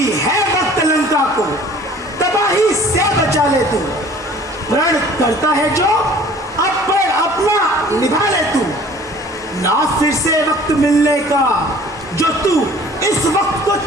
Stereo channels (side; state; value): both; normal; correlation 0.50